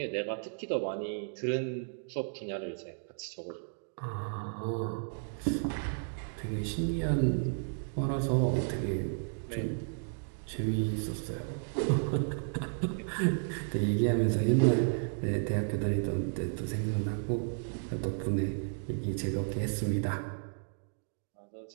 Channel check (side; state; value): left; silent; digital silence